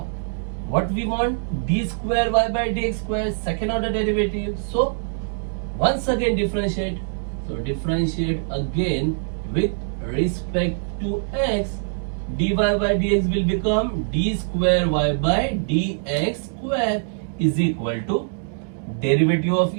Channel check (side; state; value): left; silent; digital silence